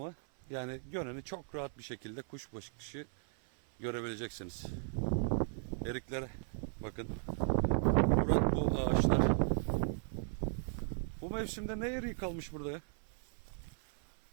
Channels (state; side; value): silent; left; 53 dB below the other